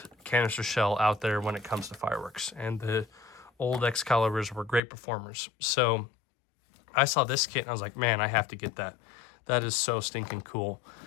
canister shell out there when it comes to fireworks, and the old Excaliburs were great performers. So I saw this kit and I was like, man, I have to get that. That is so stinking cool.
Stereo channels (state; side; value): drops out; right; at 4.8 s